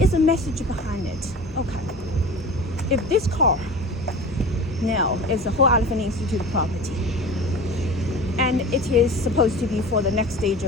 the message behind it? Okay. If this car now is the Whole Elephant Institute property, and it is supposed to be for the next stage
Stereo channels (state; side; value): normal; both; correlation 0.36